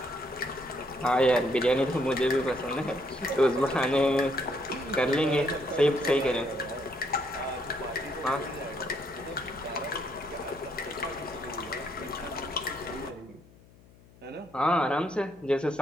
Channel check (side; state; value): left; noise; hum, 25 dB below the sound